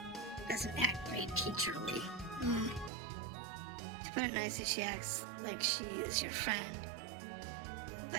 doesn't act very teacherly? To put it nicely, she acts like she is your friend,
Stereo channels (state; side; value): drops out; left; at 2.9 s